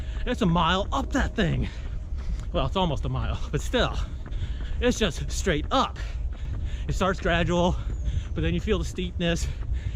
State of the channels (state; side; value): identical; both; correlation 1.00